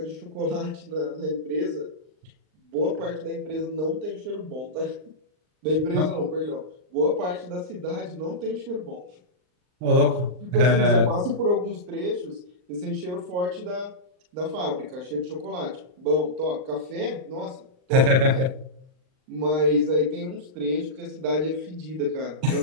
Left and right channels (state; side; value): late; left; 39 ms